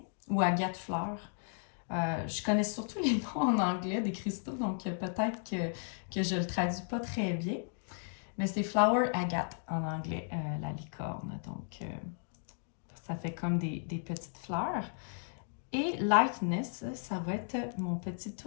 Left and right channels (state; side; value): silent; right; digital silence